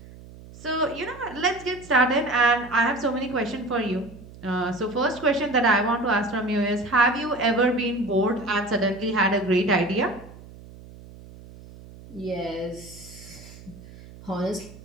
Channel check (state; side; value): noise; right; hum, 18 dB below the sound